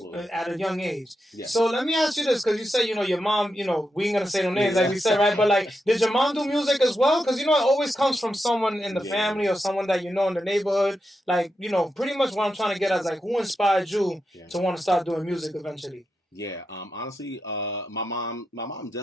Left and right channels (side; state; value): both; normal; correlation 0.87